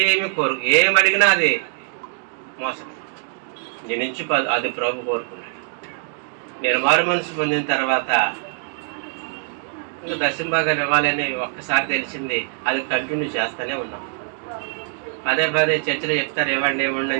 ఏమి అడిగినా అది మోసం. నీ నుంచి అది ప్రభు కోరుకున్నాడు. నేను మారు మనసు పొందిన తర్వాత ఇంకా దశంభాగాలు ఇవ్వాలని ఒక్కసారి తెలిసింది. అది కంటిన్యూ చేస్తూనే ఉన్నాం. పదే చర్చలో చెప్తారు ఇవ్వండి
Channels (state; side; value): silent; left; 56 dB below the other